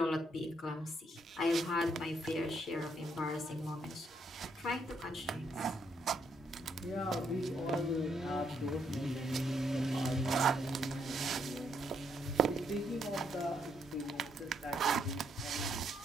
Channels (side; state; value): both; normal; correlation 0.74